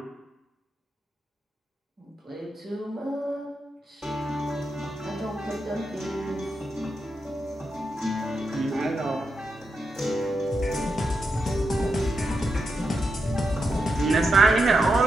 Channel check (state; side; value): normal; both; correlation 0.85